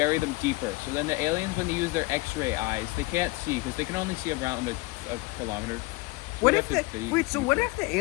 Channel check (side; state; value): right; quieter; 22.2 dB